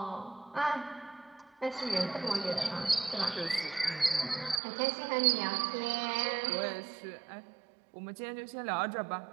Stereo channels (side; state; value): left; drops out; at 4.6 s